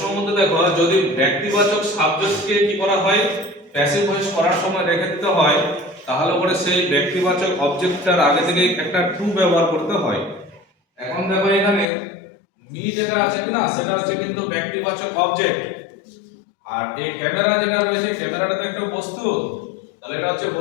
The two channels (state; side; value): drops out; right; at 11.9 s